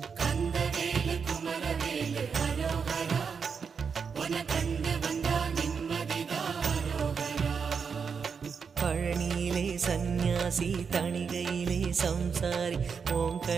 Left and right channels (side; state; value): left; quieter; 6.0 dB